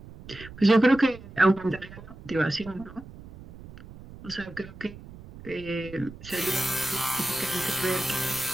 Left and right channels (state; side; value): noise; right; rumble, 17 dB below the sound